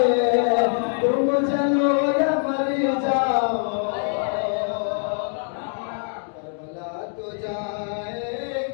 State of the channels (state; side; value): silent; right; 62 dB below the other